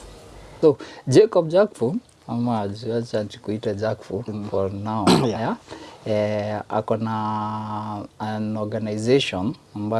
So Jacob Jakfu, ama acha tukuite Jakfu for now. Ako na an organization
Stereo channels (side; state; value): both; identical; correlation 1.00